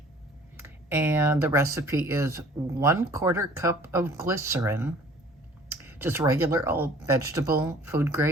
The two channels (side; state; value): both; normal; correlation 0.52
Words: And the recipe is 1/4 cup of glycerin, just regular old vegetable food